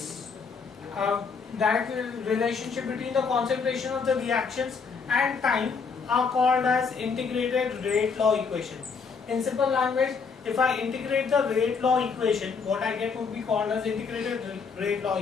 direct relationship between the concentration of the reactions and time are called as integrated rate law equation. In simple language, if I integrate the rate law equation, what I get would be called as integrated rate law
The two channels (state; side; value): quieter; right; 5.4 dB